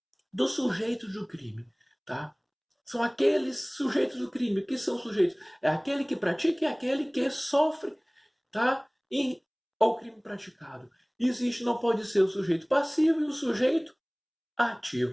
do sujeito do crime, tá? São aqueles sujeitos do crime. O que são sujeitos? É aquele que pratica e aquele que sofre, tá? Ao crime praticado. Existe, não pode ser o sujeito passivo e o sujeito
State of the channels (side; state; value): both; identical; correlation 1.00